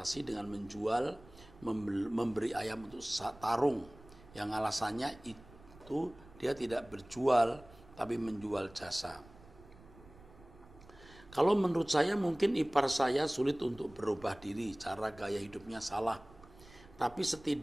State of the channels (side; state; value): right; noise; rumble, 22 dB below the sound